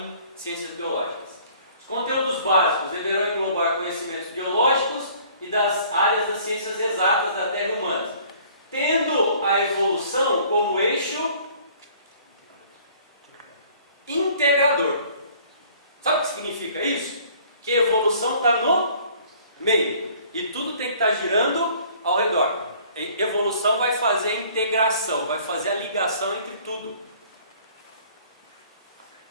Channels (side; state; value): both; inverted; correlation -0.54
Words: ciências biológicas. Os conteúdos básicos deverão englobar conhecimentos biológicos e das áreas das ciências exatas da Terra e humanas, tendo a evolução como eixo integrador. Sabe o que significa isso? Que a evolução está no meio e tudo tem que estar girando ao redor. A evolução vai fazer a integração, vai fazer a ligação entre tudo.